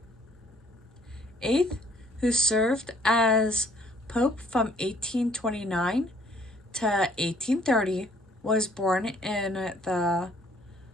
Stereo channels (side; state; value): both; normal; correlation 0.61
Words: Eighth, who served as Pope from 1829 to 1830, was born in the